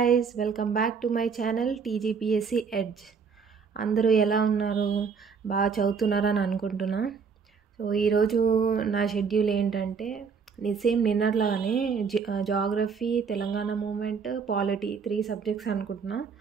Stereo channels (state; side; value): quieter; left; 5.8 dB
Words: welcome back to my channel TGPSC edge. అందరూ ఎలా ఉన్నారు? బాగా చదువుతున్నారని అనుకుంటున్నా. సో ఈరోజు నా షెడ్యూల్ ఏంటంటే సేమ్ నిన్నట్లాగానే geography, Telangana movement, polity 3 subjects అనుకుంటున్నా.